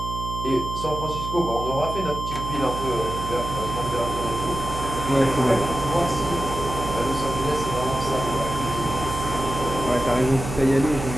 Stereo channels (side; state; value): right; noise; hum, 6 dB below the sound